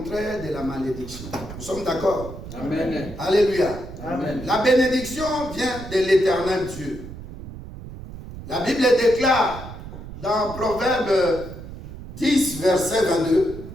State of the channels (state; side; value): noise; right; rumble, 12 dB below the sound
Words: de la malédiction. Nous sommes d'accord? Amen. Alléluia. Amen. La bénédiction vient de l'Éternel Dieu. La Bible déclare dans Proverbe 10, verset 22.